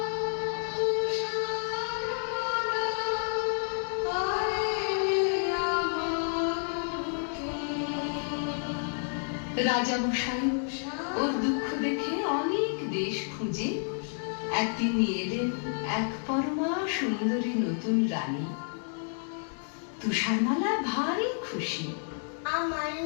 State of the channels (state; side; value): silent; right; 58 dB below the other